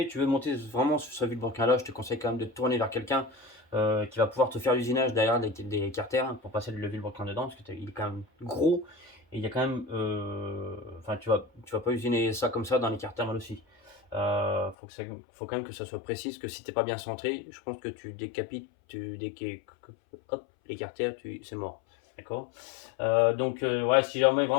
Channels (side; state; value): right; drops out; at 14.8 s